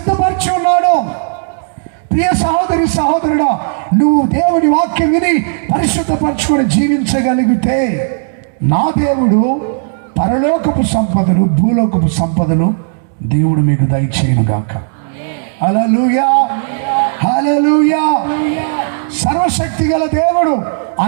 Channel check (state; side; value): silent; left; digital silence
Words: ఉన్నాడు. ప్రియ సహోదరి సహోదరుడా, నువ్వు దేవుని వాక్యం విని పరిశుద్ధపరచుకొని జీవించగలిగితే నా దేవుడు పరలోకపు సంపదలు, భూలోకపు సంపదలు దేవుడు మీకు దయచేయునుగాక. హల్లెలూయా, హల్లెలూయా. సర్వశక్తి గల దేవుడు